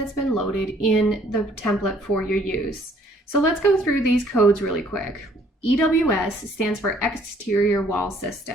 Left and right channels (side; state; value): both; normal; correlation 0.61